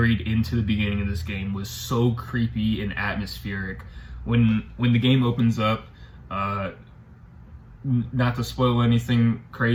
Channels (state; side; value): identical; both; correlation 1.00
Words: into the beginning of this game was so creepy and atmospheric. When the game opens up, not to spoil anything